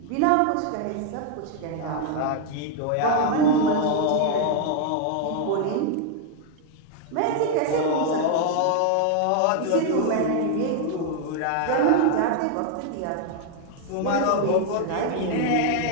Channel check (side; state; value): both; different; correlation 0.00